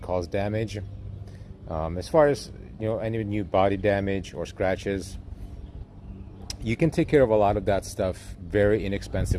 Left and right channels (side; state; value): both; identical; correlation 1.00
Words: cause damage. As far as any new body damage or scratches, you can take care of a lot of that stuff very